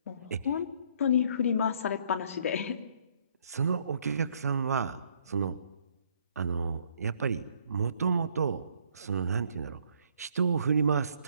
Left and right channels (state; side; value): inverted; both; correlation -0.65